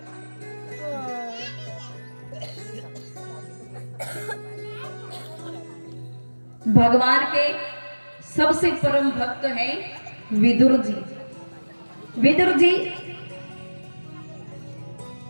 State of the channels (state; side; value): inverted; both; correlation -1.00